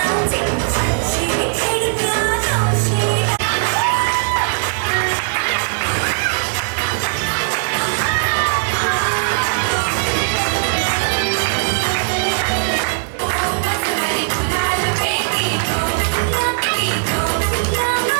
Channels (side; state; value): left; silent; digital silence